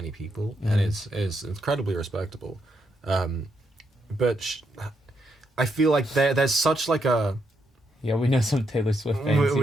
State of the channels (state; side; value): normal; both; correlation 0.79